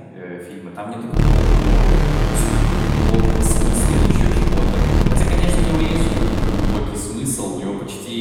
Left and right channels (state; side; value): identical; both; correlation 1.00